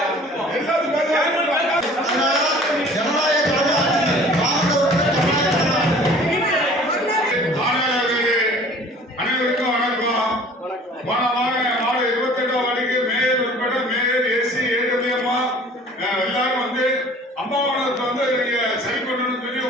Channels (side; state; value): both; normal; correlation 0.49